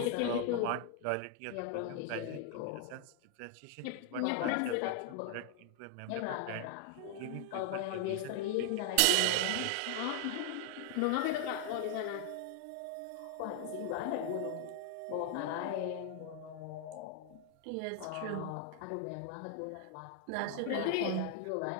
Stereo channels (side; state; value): both; different; correlation 0.00